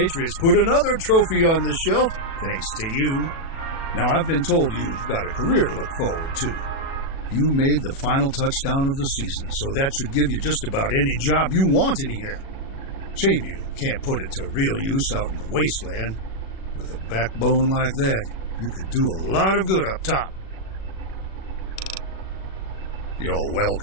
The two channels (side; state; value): right; late; 36 ms